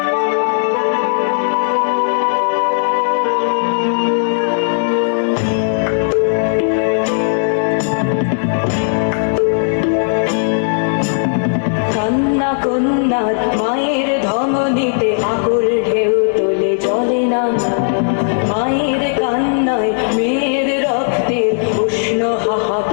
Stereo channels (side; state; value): right; silent; digital silence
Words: কান্না কন্যা মায়ের ধমনীতে আকুল ঢেউ তোলে জলে না, মায়ের কান্নায় মেয়ের রক্তের উষ্ণ